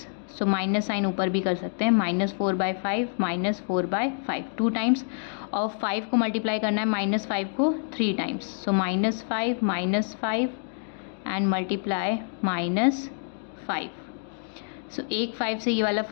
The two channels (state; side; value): silent; right; digital silence